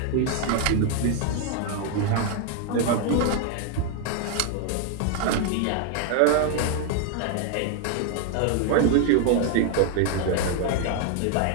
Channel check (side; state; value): both; different; correlation 0.00